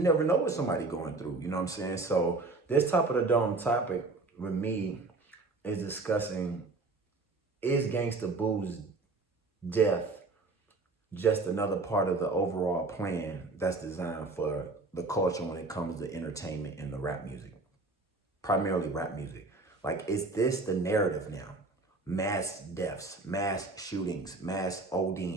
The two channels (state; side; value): quieter; left; 3.5 dB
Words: never know what somebody going through, you know what I'm saying? So this top of the dome topic with me is discussing, is Gangsta Boo's death just another part of the overall plan that's designed for the culture when it comes to entertainment and the rap music, primarily rap music? Like, is this the narrative now? Mass deaths, mass shootings, mass